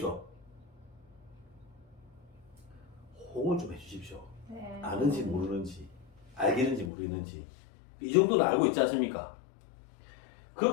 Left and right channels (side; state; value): right; drops out; at 6.9 s